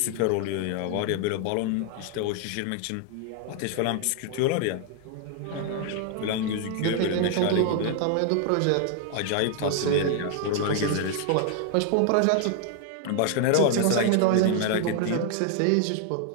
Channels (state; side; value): different; both; correlation 0.00